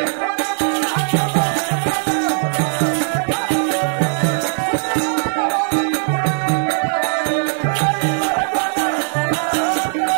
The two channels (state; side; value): silent; left; 67 dB below the other